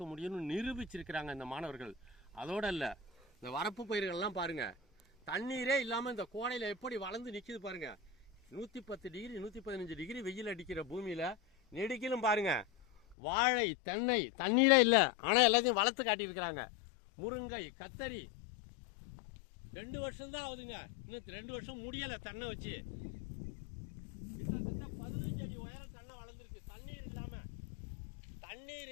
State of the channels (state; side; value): drops out; right; at 13.2 s